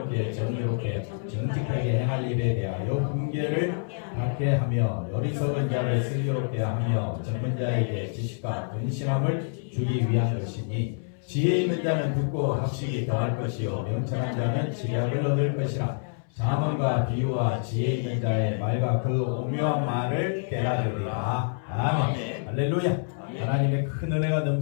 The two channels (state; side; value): silent; right; 60 dB below the other